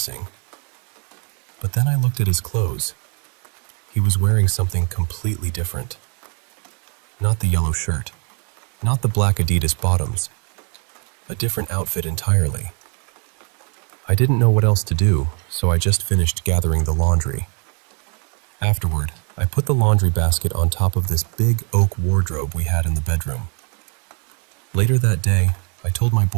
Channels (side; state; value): left; quieter; 37.4 dB